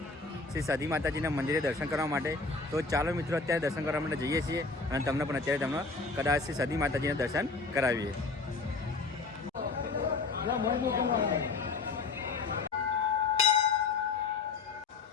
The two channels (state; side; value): quieter; right; 4.0 dB